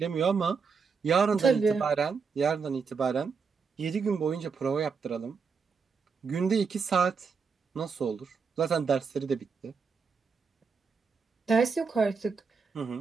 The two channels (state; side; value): quieter; left; 5.4 dB